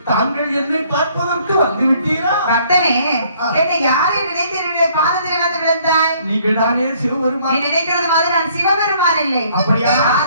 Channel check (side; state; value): both; inverted; correlation -0.62